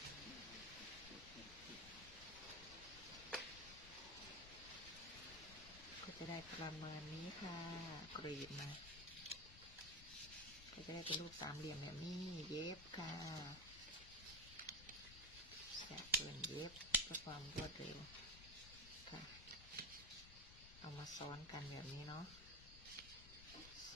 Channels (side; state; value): left; noise; rumble, 14 dB below the sound